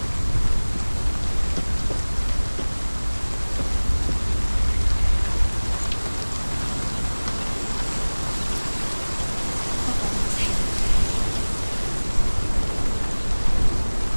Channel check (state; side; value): inverted; both; correlation -1.00